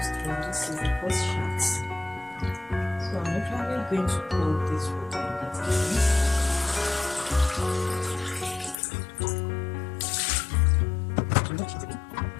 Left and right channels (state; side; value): drops out; right; at 8.8 s